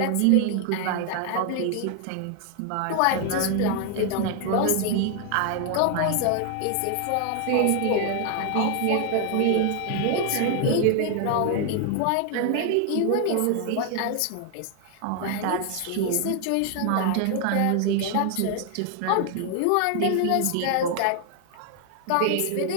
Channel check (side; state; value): both; different; correlation 0.00